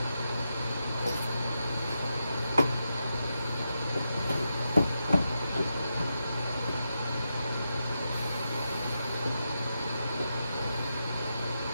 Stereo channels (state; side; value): inverted; both; correlation -0.86